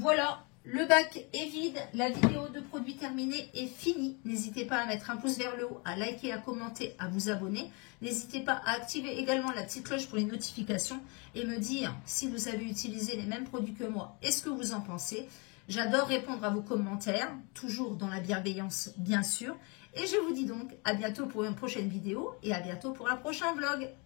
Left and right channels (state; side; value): quieter; right; 31.4 dB